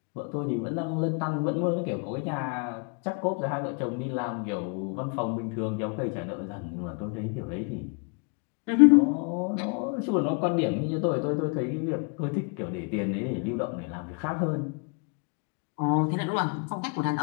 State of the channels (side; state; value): right; quieter; 37.4 dB